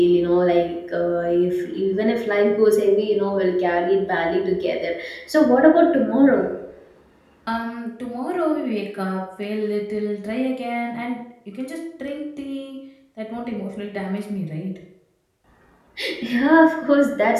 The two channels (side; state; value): both; identical; correlation 1.00